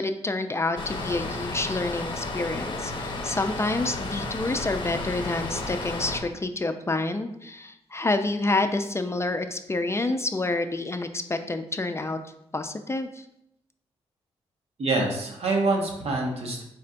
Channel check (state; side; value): normal; both; correlation 0.59